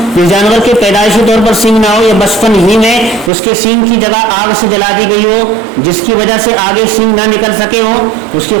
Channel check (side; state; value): left; drops out; at 3.3 s